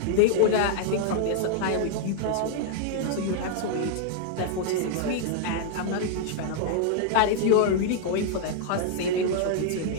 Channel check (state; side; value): different; both; correlation -0.01